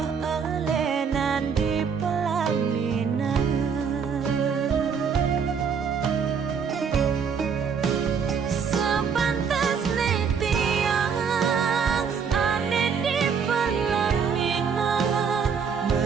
elenan di pelaminan Sepantas nih tiang Ane di pelaminan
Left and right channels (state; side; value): quieter; left; 6.4 dB